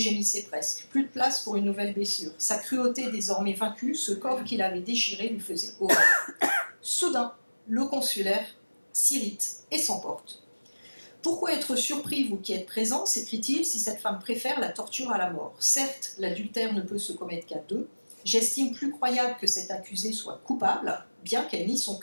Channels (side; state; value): both; inverted; correlation -1.00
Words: presque. Plus de place pour une nouvelle blessure. Sa cruauté désormais vaincue, ce corps qu'il avait déchiré lui faisait horreur. Soudain, le consulaire s'irrite et s'emporte. « Pourquoi être surpris, vous qui êtes présents, s'écrie-t-il, si cette femme préfère la torture à la mort? Certes, l'adultère ne peut se commettre qu'à deux. J'estime plus croyable que cette accusée soit coupable, bien qu'elle nie son